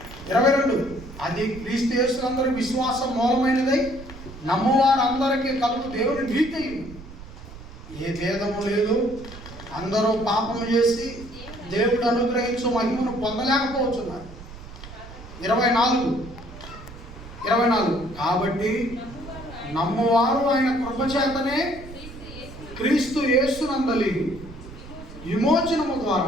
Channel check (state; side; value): noise; right; rumble, 15 dB below the sound